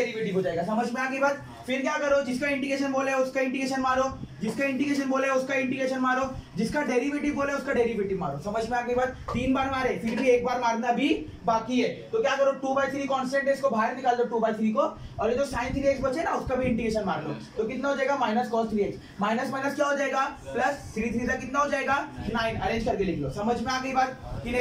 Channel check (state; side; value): identical; both; correlation 1.00